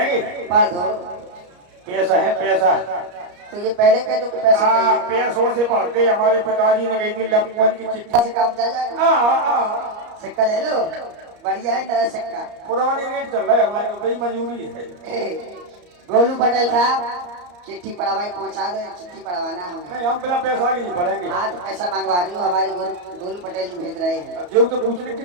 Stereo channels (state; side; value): late; left; 34 ms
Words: पढ़ दो। पैसा है पैसा। तो ये पहले कह दो कि पैसा चाहिए। पैसों से पढ़ते। हमारे पिताजी ने कही थी लपमन की चिट्ठी से काम चल जाएगा। सिक्का ले लो, बढ़िया है नया सिक्का। पुरानी रेट चल रहा है हमारे तो, बड़ी मंजूरी है। गोलू पटेल साहब, चिट्ठी पढ़वाई पहुंचा दो। चिट्ठी पढ़वाना हमें। नहीं, हम बिना पैसा के नहीं पढ़ेंगे। हाँ तो पैसा मंगवा रही हूँ, हमारे गोलू पटेल जी भेज रहे हैं। जो तो पूछने